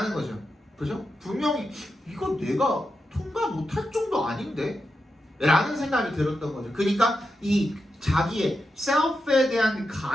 거죠. 그죠? 분명히 이거 내가 통과 못할 정도 아닌데? 라는 생각이 들었던 거죠. 그러니까 이 자기의 셀프에 대한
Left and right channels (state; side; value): normal; both; correlation 0.88